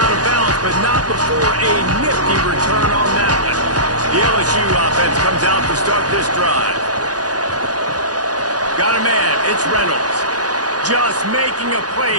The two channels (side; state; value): left; late; 0.68 ms